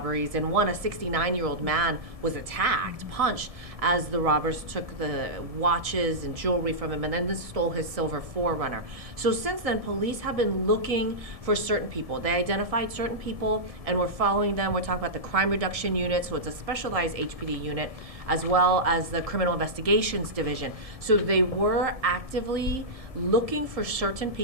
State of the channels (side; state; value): left; late; 1.7 ms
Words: and one, a 69-year-old man, was attacked, punched, as the robbers took the watches and jewelry from him and then stole his silver 4Runner. So since then, police have been looking for certain people. They identified certain people and we're following them. We're talking about the crime reduction unit, so it's a specialized HPD unit, as well as the criminal investigations division. So they were actively looking for certain